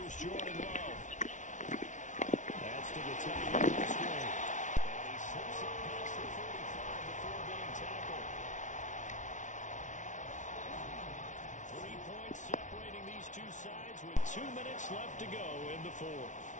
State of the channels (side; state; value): right; late; 0.36 ms